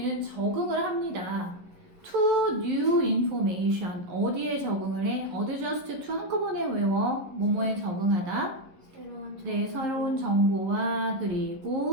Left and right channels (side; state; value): left; late; 11 ms